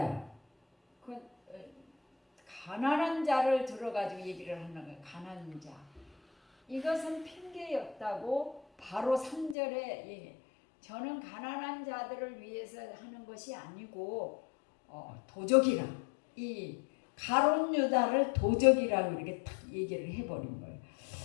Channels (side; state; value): right; drops out; at 9.6 s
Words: 그 가난한 자를 들어가지고 얘기를 하는 거예요. 가난한 자. 이것은 핑계였다고 바로 3절에 저는 가난한 자들을 위해서 하는 것이 아니고 도적이라 이 가룟 유다를 도적이라고 이렇게 딱 얘기를 해버린 거예요.